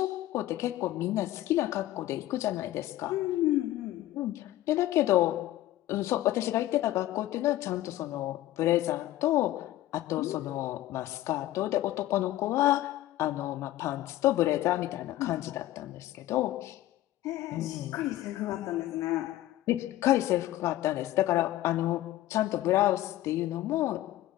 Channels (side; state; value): right; quieter; 14.9 dB